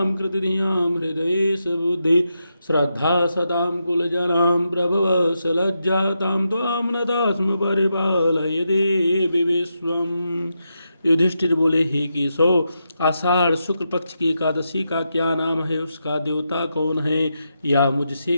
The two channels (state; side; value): inverted; both; correlation -0.85